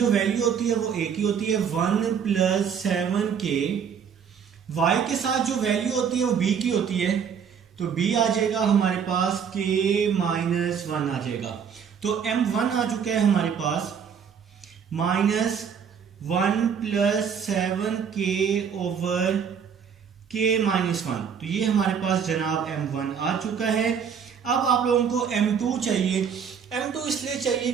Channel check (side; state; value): left; quieter; 7.2 dB